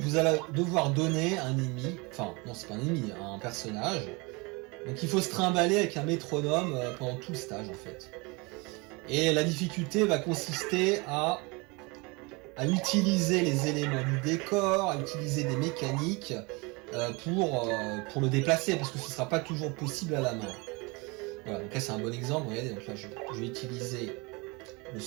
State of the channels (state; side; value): quieter; left; 27.3 dB